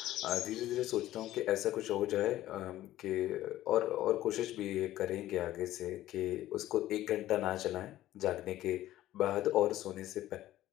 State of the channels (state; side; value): quieter; right; 14.4 dB